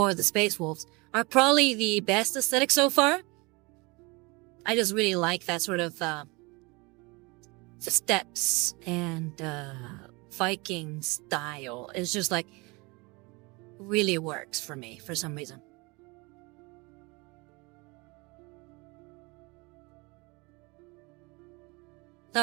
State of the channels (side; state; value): left; quieter; 26.1 dB